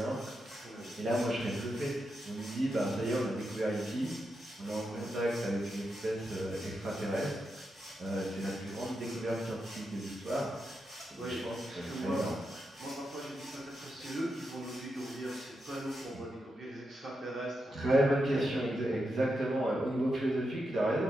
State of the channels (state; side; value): normal; both; correlation 0.86